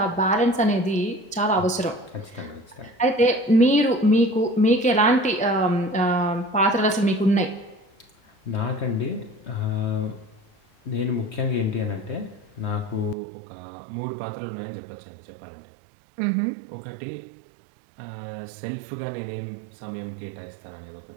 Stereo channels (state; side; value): drops out; left; at 13.2 s